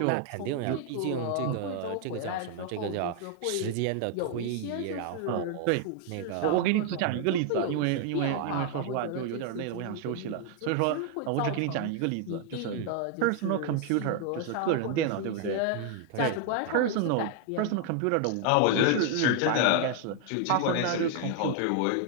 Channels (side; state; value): both; different; correlation 0.00